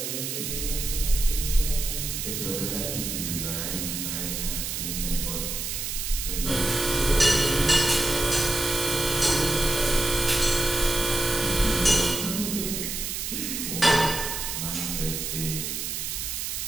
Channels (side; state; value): right; noise; hiss, 3 dB below the sound